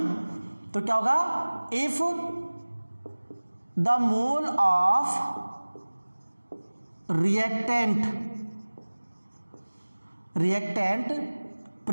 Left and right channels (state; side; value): inverted; both; correlation -1.00